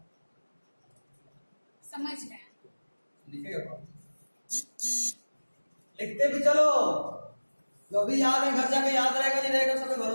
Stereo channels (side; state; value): both; inverted; correlation -1.00